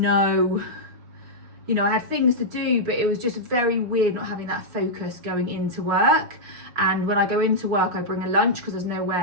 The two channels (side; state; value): left; late; 6.2 ms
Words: you know, I had things to do, but it was just very weird not having that focus going into work. And when I go into work, I bring a lunch because there's no